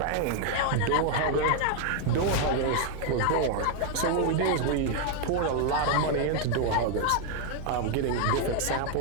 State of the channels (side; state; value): both; different; correlation 0.00